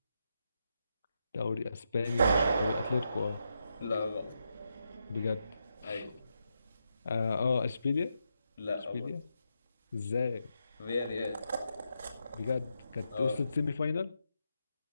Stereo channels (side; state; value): both; inverted; correlation -0.84